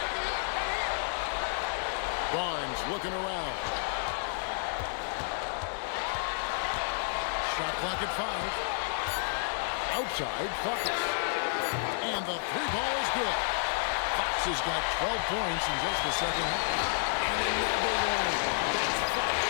Barnes looking around. Shot clock at 5. Outside, Fox. And the 3-ball is good. Fox has got 12 points in just the second half. And another one. That's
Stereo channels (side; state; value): right; silent; digital silence